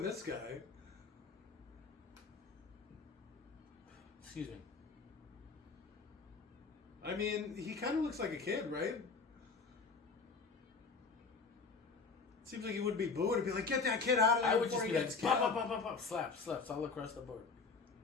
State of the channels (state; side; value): quieter; right; 4.6 dB